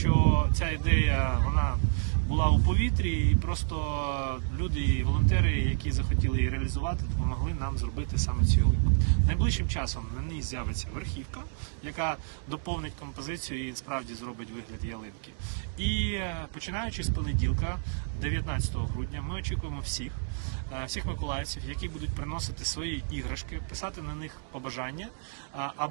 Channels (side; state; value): left; silent; digital silence